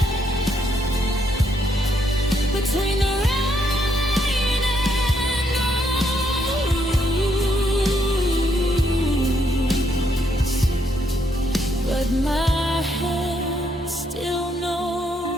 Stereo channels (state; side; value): normal; both; correlation 0.74